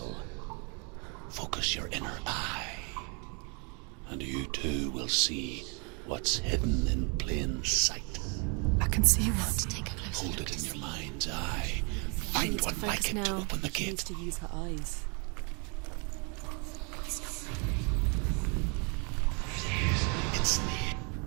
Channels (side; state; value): left; quieter; 34.8 dB